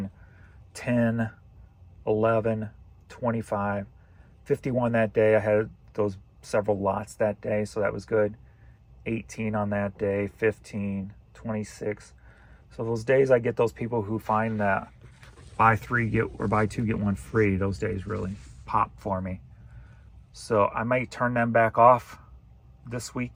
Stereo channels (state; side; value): identical; both; correlation 1.00